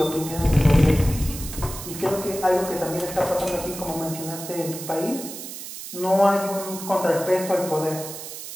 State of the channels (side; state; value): right; noise; hiss, 10 dB below the sound